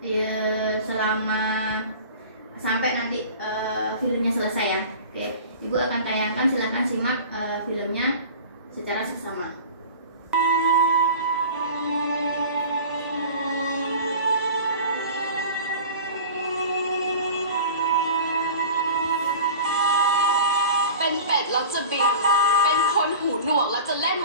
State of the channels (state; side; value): inverted; both; correlation -0.39